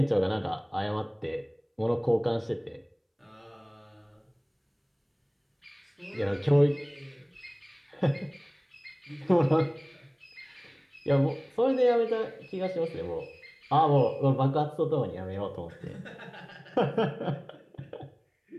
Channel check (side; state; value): both; identical; correlation 1.00